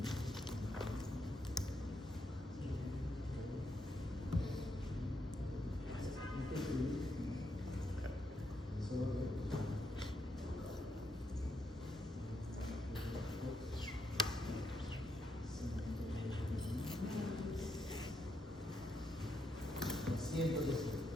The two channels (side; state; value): both; normal; correlation 0.79